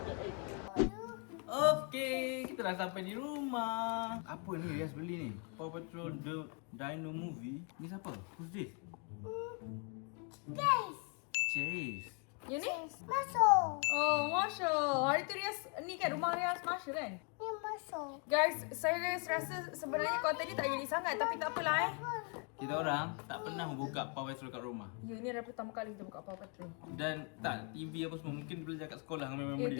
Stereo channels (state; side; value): quieter; right; 35.8 dB